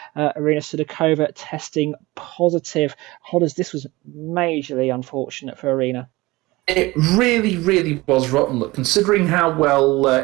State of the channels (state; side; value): quieter; left; 20.9 dB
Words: Irina Sudakova testing positive. Hodders, this was majorly unfortunate for Irina. It really, really was rotten. Look, considering how well